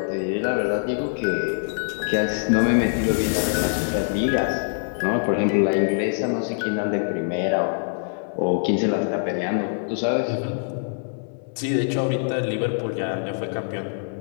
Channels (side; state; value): right; silent; 63 dB below the other